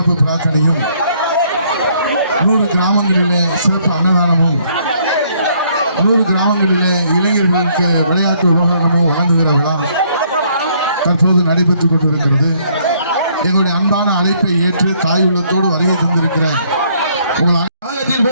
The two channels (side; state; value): both; inverted; correlation -0.67